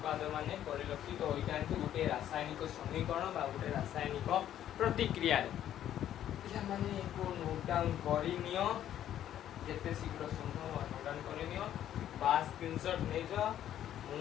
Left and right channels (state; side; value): quieter; right; 11.2 dB